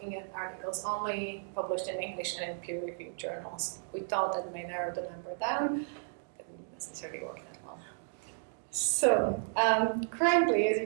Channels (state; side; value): silent; left; digital silence